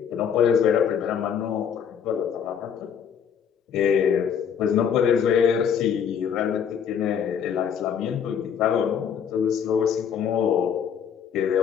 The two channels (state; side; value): quieter; right; 7.8 dB